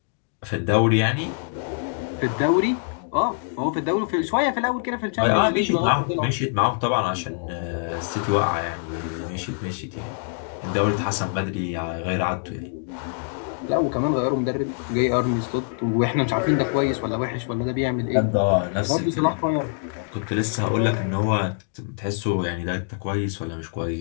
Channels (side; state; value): right; silent; digital silence